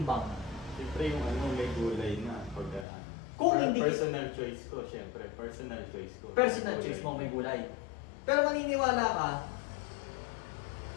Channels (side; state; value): right; drops out; at 2.9 s